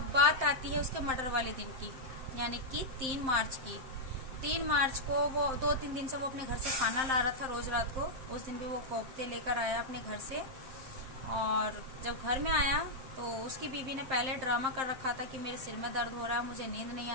बात आती है उसके मर्डर वाले दिन की, यानी कि 3 मार्च की। 3 मार्च को वो 2-3 दिन से वो अपने घर से खाना ला रहा था रोज रात को, उस दिन भी वो कोफ्ते लेकर आया अपने घर से। और जब घर में आया तो उसकी बीवी ने पहले ड्रामा कर रखा था कि मेरे सिर में दर्द हो रहा है, मुझे नींद नहीं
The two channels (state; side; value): late; left; 7.6 ms